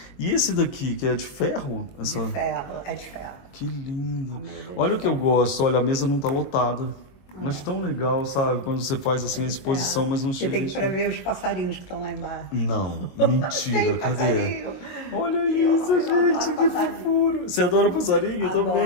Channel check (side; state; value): right; late; 22 ms